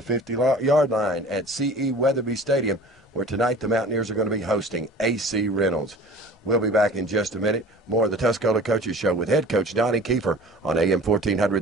50-yard line at C.E. Weatherby Stadium, where tonight the Mountaineers are going to be hosting AC Reynolds. We'll be back in just a minute. More of the Tuscola Coaches Show with head coach Donnie Kiefer on AM 1400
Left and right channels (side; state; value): both; normal; correlation 0.42